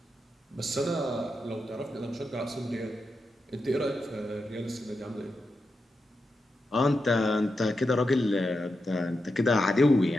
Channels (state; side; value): normal; both; correlation 0.88